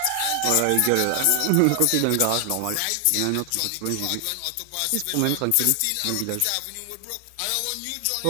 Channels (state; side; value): different; both; correlation 0.00